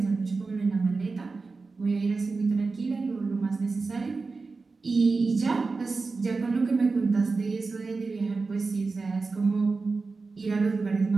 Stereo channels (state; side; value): quieter; left; 4.1 dB